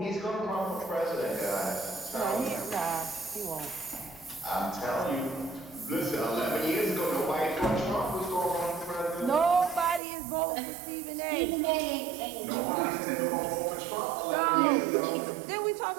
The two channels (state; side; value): drops out; left; at 10.0 s